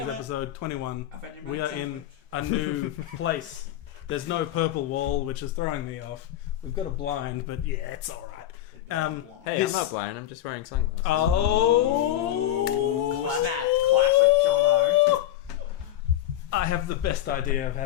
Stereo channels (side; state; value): right; quieter; 12.9 dB